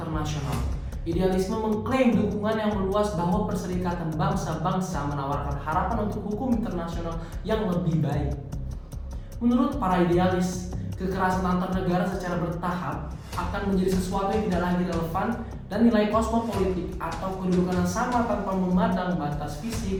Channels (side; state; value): both; identical; correlation 1.00